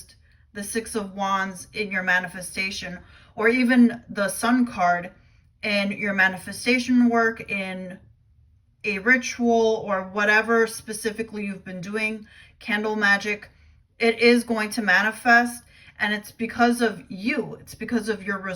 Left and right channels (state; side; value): identical; both; correlation 1.00